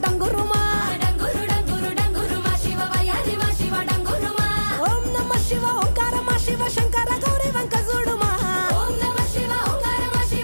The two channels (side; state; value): both; inverted; correlation -1.00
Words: డంగురుమా డంగురు డంగురు డంగురుమా శివ వయ్యారిమా శివ డంగురుమా ఓం నమ శివ ఓంకారమా శివ శంకర గౌరీ వంక చూడుమా ఓం నమ శివ ఓంకారమా